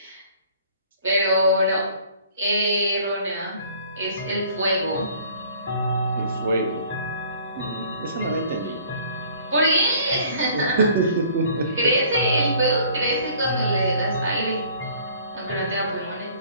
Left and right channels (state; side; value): inverted; both; correlation -0.54